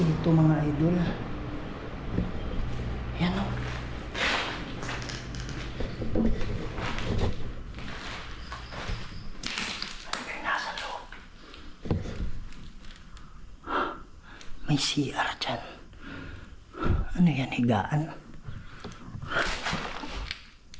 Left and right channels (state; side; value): identical; both; correlation 1.00